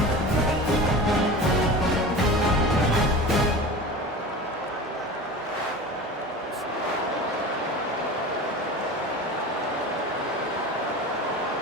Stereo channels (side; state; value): both; normal; correlation 0.33